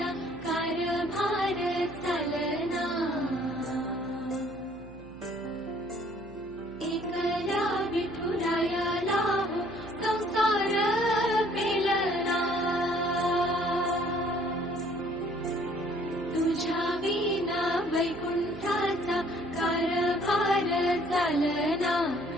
कारभार चालना, एकल्या विठुरायाला हो संसार पेलना, तुझ्या विना वैकुंठाचा कारभार चालना,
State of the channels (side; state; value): right; noise; hum, 20 dB below the sound